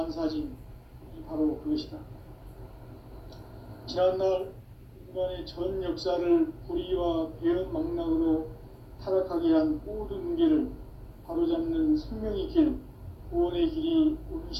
바로 그것이다. 지난날 인간의 전 역사를 불의와 배음 망락으로 타락하게 한 모든 문제를 바로잡는 생명의 길, 구원의 길이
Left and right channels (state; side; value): identical; both; correlation 1.00